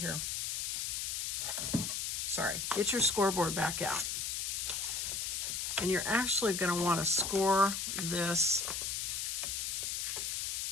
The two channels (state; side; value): noise; left; hiss, 1 dB below the sound